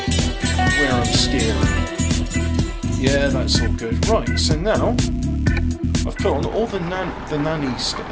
where I'm steering. Yeah, that's all good. Right, so now I've put on all the nanny state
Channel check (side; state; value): both; identical; correlation 1.00